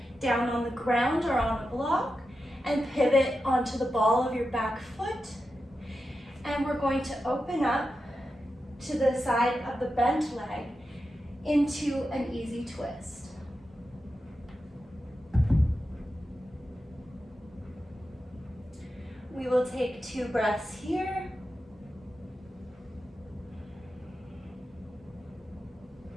down on the ground or on a block and pivot onto the ball of your back foot. And we're going to open up to the side of the bent leg into an easy twist. We will take 2 breaths here.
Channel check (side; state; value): both; normal; correlation 0.90